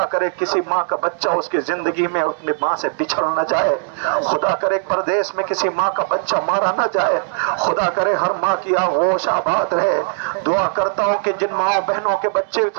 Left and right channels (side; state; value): left; silent; digital silence